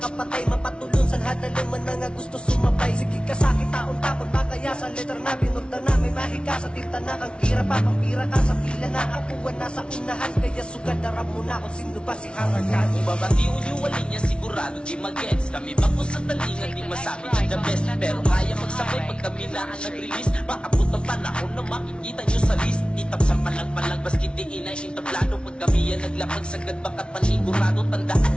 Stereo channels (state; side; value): late; right; 0.057 ms